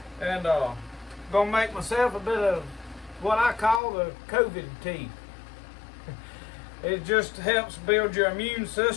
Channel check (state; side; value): drops out; right; at 3.8 s